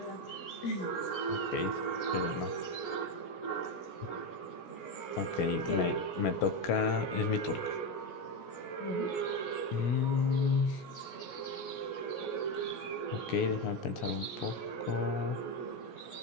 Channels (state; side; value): late; right; 17 ms